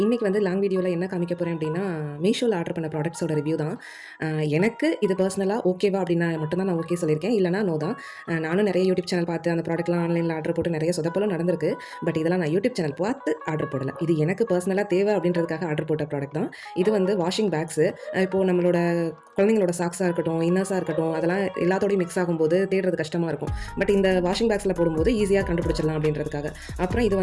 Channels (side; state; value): both; identical; correlation 1.00